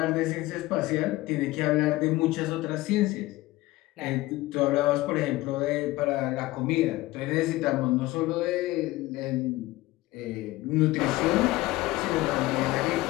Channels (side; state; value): right; quieter; 18.5 dB